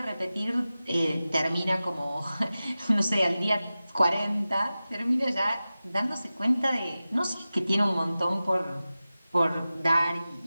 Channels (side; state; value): both; inverted; correlation -0.95